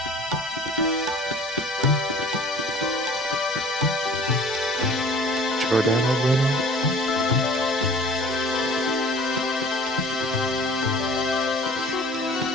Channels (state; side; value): normal; both; correlation 0.47